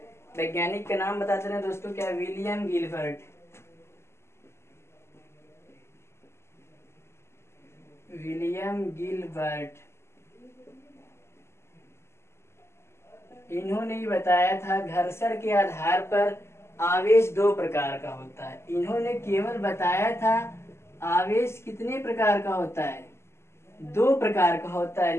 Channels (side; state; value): right; late; 0.13 ms